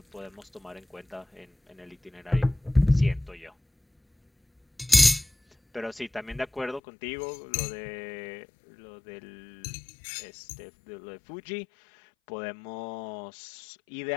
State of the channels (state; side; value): drops out; right; at 6.8 s